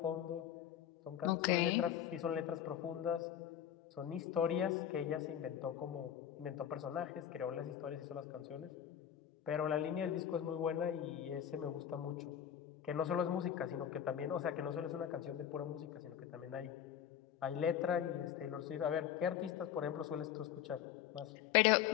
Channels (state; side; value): quieter; right; 9.8 dB